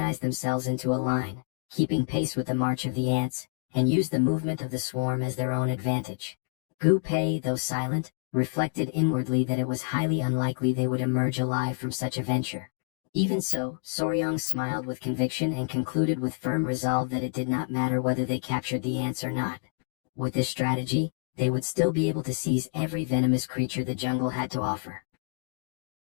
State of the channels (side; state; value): right; silent; digital silence